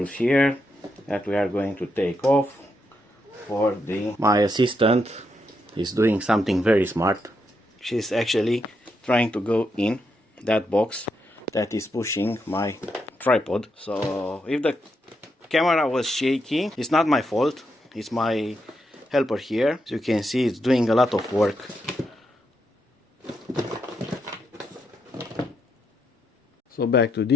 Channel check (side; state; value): both; normal; correlation 0.81